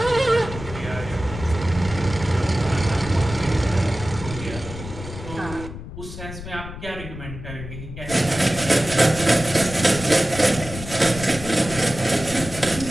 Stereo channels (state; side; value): noise; left; rumble, 11 dB below the sound